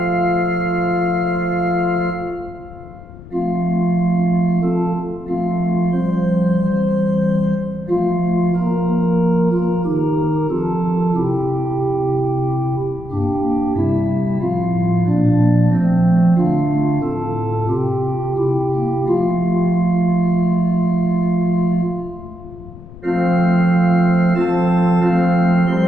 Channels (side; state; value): left; noise; rumble, 17 dB below the sound